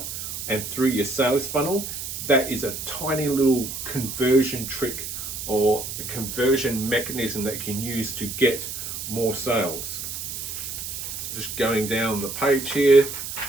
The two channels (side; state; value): right; noise; hiss, 6 dB below the sound